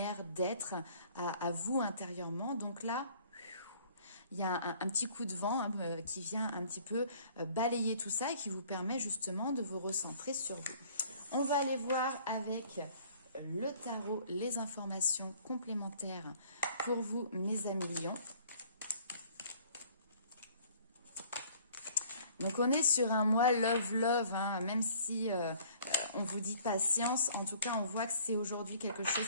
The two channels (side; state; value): both; inverted; correlation -0.55